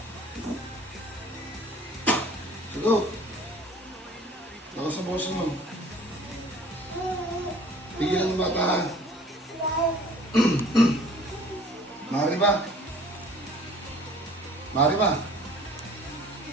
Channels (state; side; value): normal; both; correlation 0.50